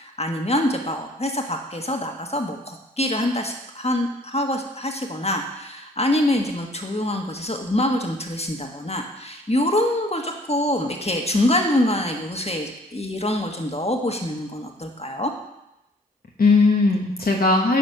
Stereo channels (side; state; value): both; normal; correlation 0.57